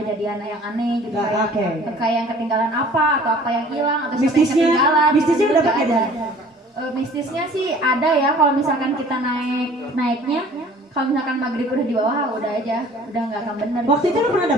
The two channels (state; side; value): normal; both; correlation 0.50